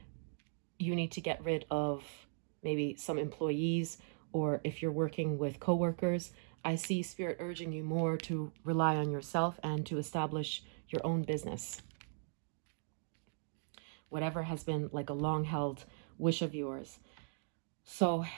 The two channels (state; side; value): silent; left; digital silence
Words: you need to get rid of maybe some employees, or if you're working with coworkers, I see Spirit urging you more to rely on yourself and to establish your own business. Whatever has been like a long-held wish of yours. So